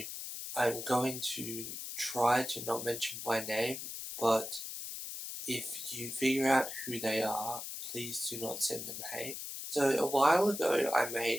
I'm going to try to not mention by name, but if you figure out who they are, please do not send them hate. So a while ago I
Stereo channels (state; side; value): noise; left; hiss, 7 dB below the sound